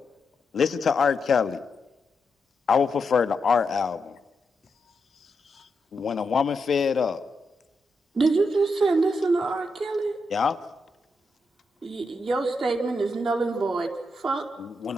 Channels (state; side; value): normal; both; correlation 0.84